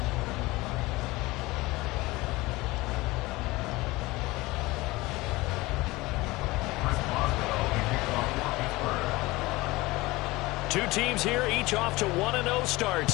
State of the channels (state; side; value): quieter; right; 20.8 dB